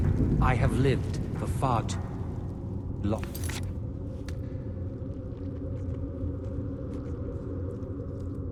I have lived for far too long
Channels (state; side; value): identical; both; correlation 1.00